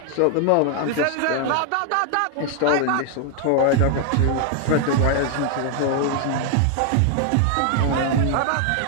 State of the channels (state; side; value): different; both; correlation 0.00